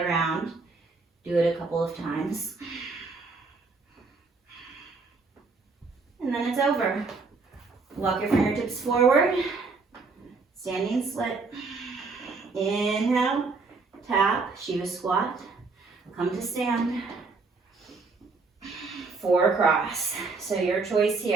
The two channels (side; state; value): left; quieter; 4.2 dB